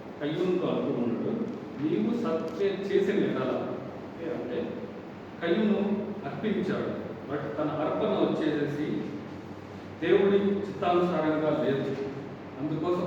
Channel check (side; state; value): both; identical; correlation 1.00